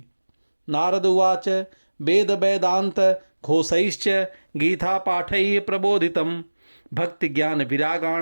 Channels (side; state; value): both; inverted; correlation -1.00